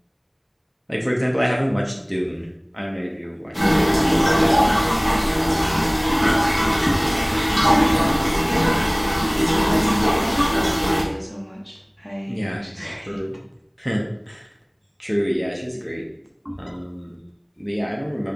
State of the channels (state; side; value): identical; both; correlation 1.00